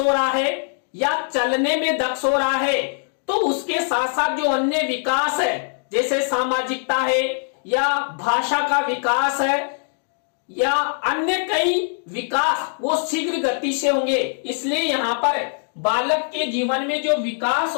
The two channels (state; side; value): silent; right; digital silence